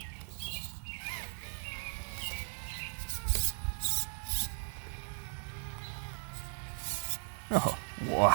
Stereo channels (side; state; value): left; silent; 53 dB below the other